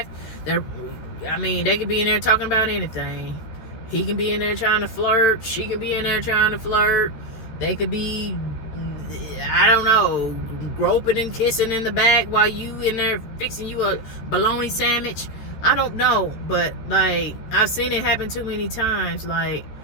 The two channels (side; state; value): right; late; 13 ms